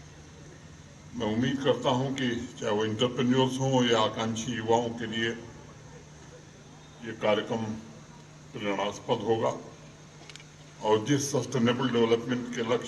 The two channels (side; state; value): both; identical; correlation 1.00